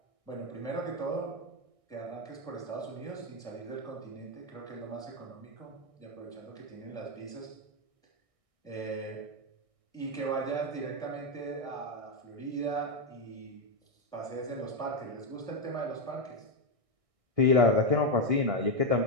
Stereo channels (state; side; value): late; left; 1.6 ms